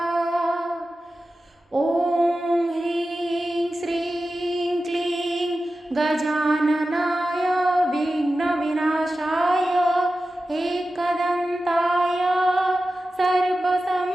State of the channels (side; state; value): both; normal; correlation 0.94